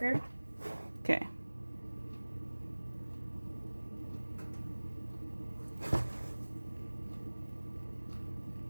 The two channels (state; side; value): inverted; both; correlation -1.00